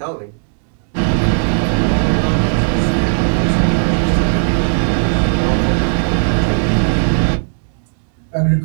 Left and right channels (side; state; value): left; silent; digital silence